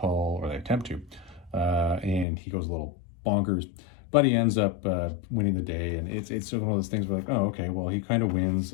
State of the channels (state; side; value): drops out; right; at 2.2 s